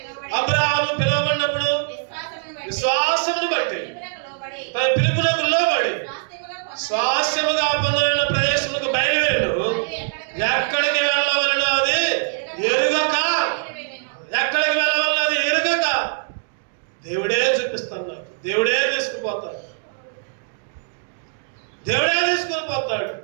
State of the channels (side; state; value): left; silent; 64 dB below the other